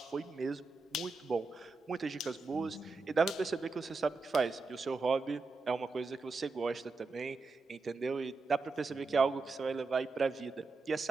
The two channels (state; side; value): quieter; left; 3.8 dB